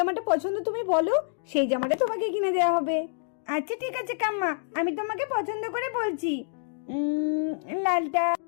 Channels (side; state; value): right; silent; digital silence